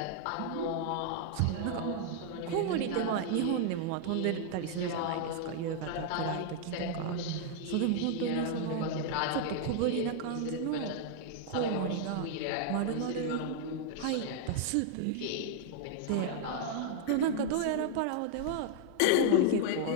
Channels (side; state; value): both; different; correlation 0.00